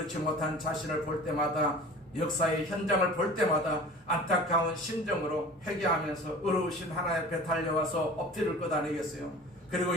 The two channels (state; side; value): normal; both; correlation 0.41